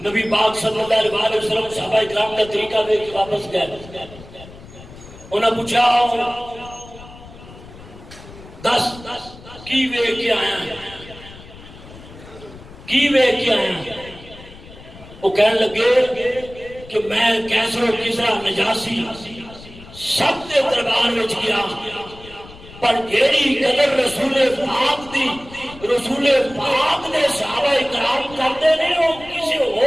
نبی پاک صلی اللہ علیہ وسلم صحابہ اکرام کا طریقہ دے کے واپس گئے انہوں نے پوچھا 10 کی وے کے آیا وہ کہنے لگے کہ میں کیسر و کسرا نجاسی سب کے دربار میں گیا پر جیڑی قدر رسول پاک نے صحابہ اکرام کرتے نہیں وہ کسی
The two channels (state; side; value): noise; left; rumble, 18 dB below the sound